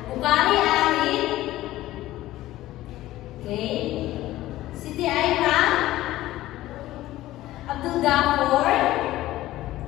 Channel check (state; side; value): quieter; right; 15.7 dB